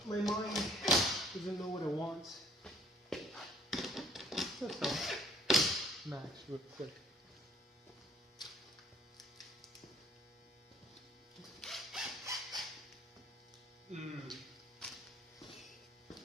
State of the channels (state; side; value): normal; both; correlation 0.59